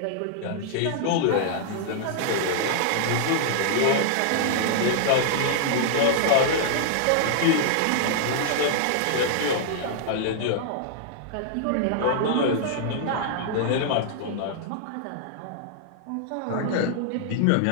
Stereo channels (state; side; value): different; both; correlation -0.01